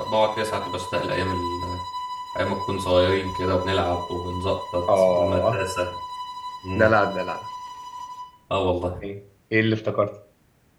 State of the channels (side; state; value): both; identical; correlation 1.00